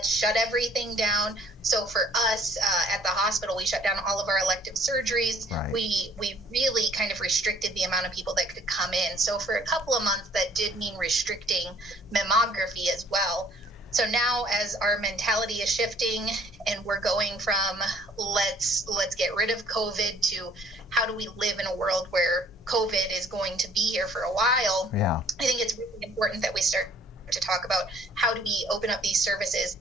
shut everything down. So for us at the hospital, we shut down all of our elective surgeries. Right. We really kind of restricted the amount of people that could come in. So for a couple of months, that did mean restricting mammography as well. So now as our mentality is shifting and we're going from let's get rid of COVID to how do we live in a world where COVID is going to be here for a while, Yeah. I think it's really important that we start to talk about how do we open up these services,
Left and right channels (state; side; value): normal; both; correlation 0.58